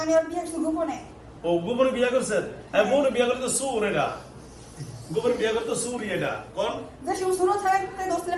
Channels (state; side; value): identical; both; correlation 1.00